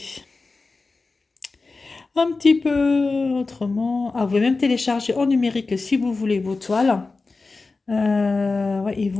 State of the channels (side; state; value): right; quieter; 3.8 dB